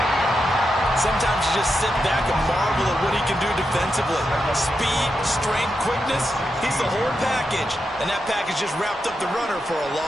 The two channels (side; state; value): both; normal; correlation 0.86